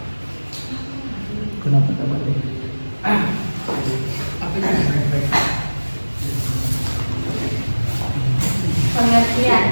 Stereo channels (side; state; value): both; inverted; correlation -1.00